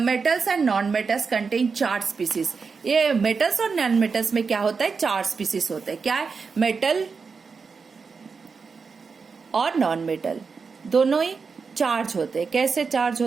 and non metals contain 4 species. ये मेटल्स और नॉन मेटल्स में क्या होता है, 4 स्पीसीज होते हैं। क्या है, मेटल और नॉन मेटल दोनों ही चार्ज होते हैं। कैसे चार्ज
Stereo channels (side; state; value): left; quieter; 5.1 dB